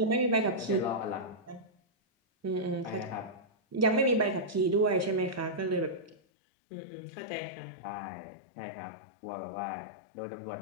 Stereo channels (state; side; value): drops out; right; at 6.2 s